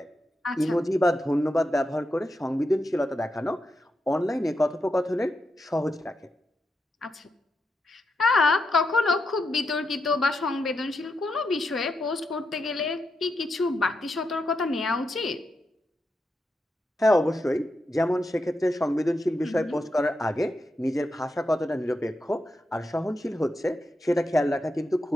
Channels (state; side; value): normal; both; correlation 0.85